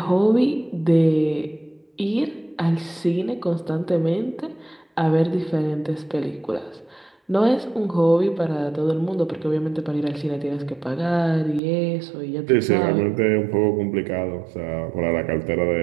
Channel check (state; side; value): drops out; left; at 11.6 s